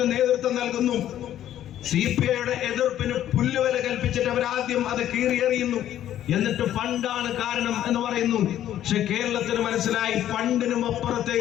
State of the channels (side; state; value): right; quieter; 11.7 dB